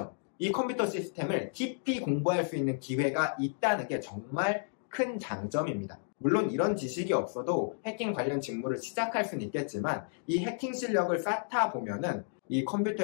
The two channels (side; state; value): right; silent; digital silence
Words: 이 컴퓨터 시스템을 깊이 공부할 수 있는 기회가 있다는 게 정말 큰 장점입니다. 물론 이런 지식이 없어도 해킹 관련 직무를 시작할 수는 있겠지만, 이 해킹 실력을 쌓다 보면은 이